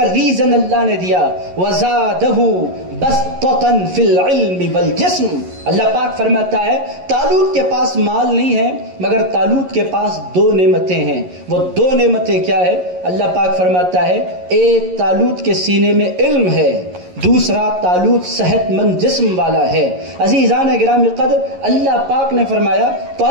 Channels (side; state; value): left; late; 11 ms